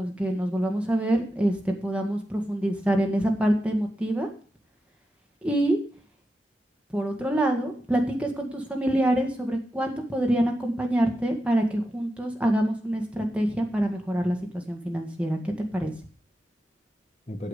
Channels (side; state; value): both; normal; correlation 0.89